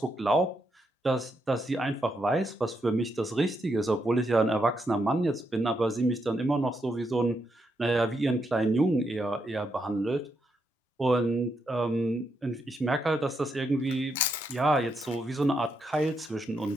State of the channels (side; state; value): both; normal; correlation 0.80